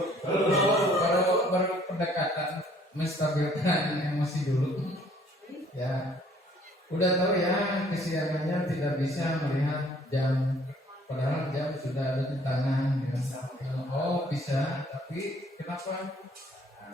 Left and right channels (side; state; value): both; normal; correlation 0.59